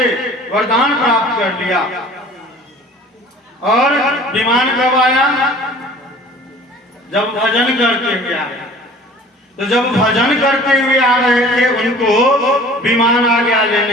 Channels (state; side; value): normal; both; correlation 0.47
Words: वरदान प्राप्त कर लिया, और विमान कब आया? जब भजन करते हुए आए। तो जब भजन करते हुए आ रहे थे, उनको विमान आ गया